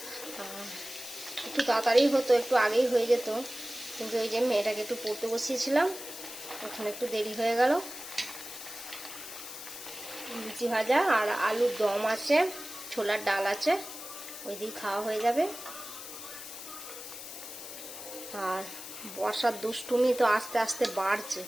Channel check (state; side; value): noise; left; hiss, 11 dB below the sound